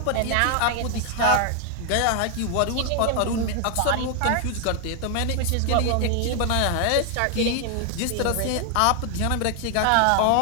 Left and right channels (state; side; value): different; both; correlation 0.00